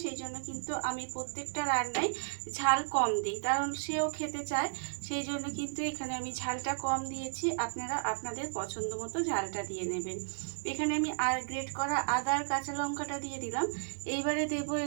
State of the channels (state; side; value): silent; left; digital silence